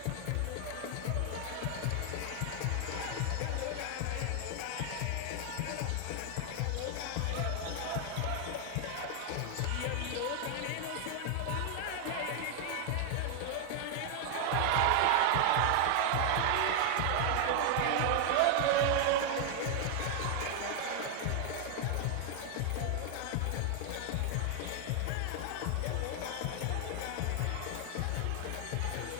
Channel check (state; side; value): different; both; correlation 0.00